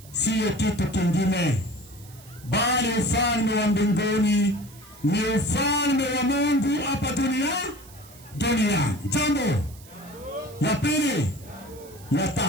siyo kitu kingine, bali ufalme wa mbinguni ni ufalme wa Mungu hapa duniani. Jambo ya pili, ya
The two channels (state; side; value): noise; right; hiss, 22 dB below the sound